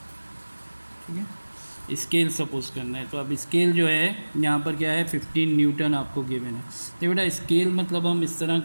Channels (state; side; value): inverted; both; correlation -1.00